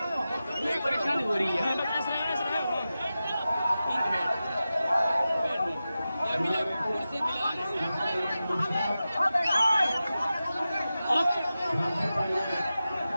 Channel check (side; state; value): both; inverted; correlation -0.93